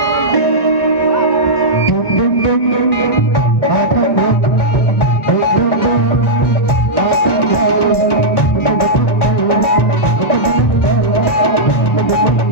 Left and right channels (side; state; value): right; late; 1.1 ms